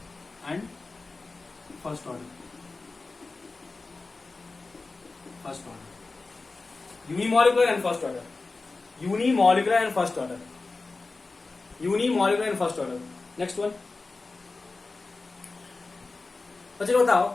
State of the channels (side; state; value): right; quieter; 3.7 dB